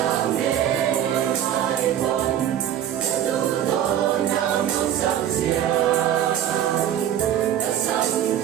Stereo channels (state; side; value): quieter; left; 10.6 dB